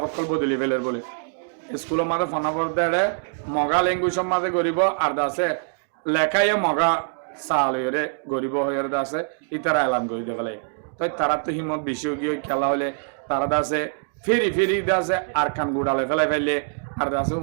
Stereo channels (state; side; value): silent; left; digital silence